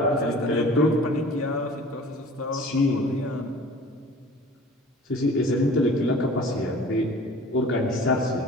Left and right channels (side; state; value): both; normal; correlation 0.45